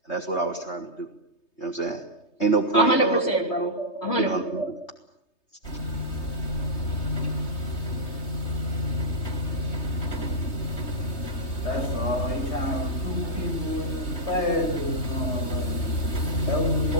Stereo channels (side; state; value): right; late; 3.2 ms